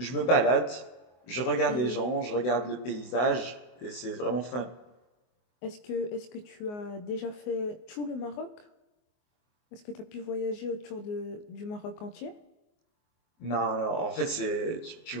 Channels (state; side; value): late; right; 24 ms